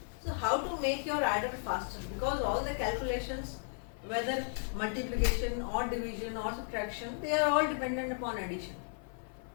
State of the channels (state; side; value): silent; right; 55 dB below the other